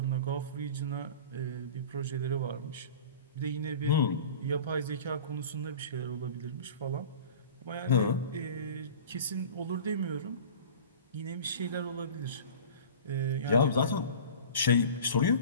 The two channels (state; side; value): inverted; both; correlation -0.39